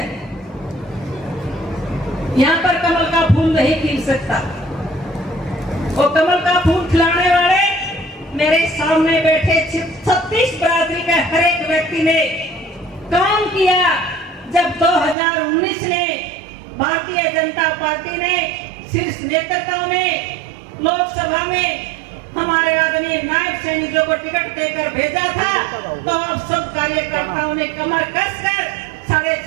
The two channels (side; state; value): left; drops out; at 15.2 s